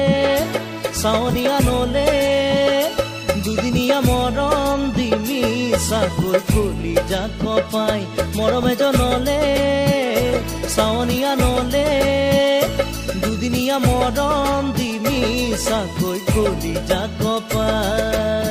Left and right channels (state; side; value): identical; both; correlation 1.00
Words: চাৱনি আনলে দুদিনীয়া মৰম দি মিছাকৈ খুলি যাক পাই, মৰম এজনলে চাৱনি আনলে দুদিনীয়া মৰম দি মিছাকৈ খুলি যাক